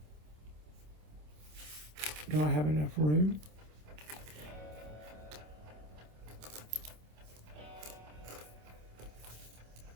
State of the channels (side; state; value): left; late; 27 ms